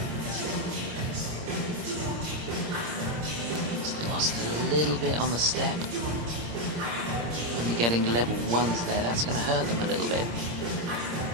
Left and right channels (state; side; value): late; left; 26 ms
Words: Just lost a little bit on the step. Only getting level 1s there, that's going to hurt them a little bit.